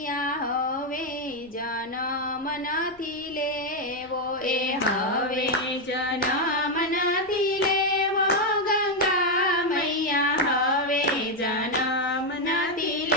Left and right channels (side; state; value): both; normal; correlation 0.04